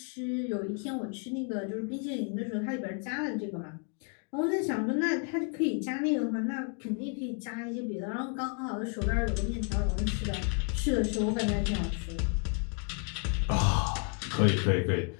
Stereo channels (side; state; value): right; quieter; 39.6 dB